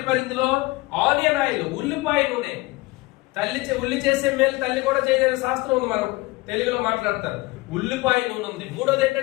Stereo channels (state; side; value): quieter; right; 21.8 dB